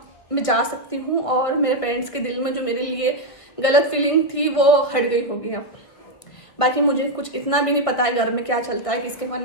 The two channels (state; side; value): late; right; 1.8 ms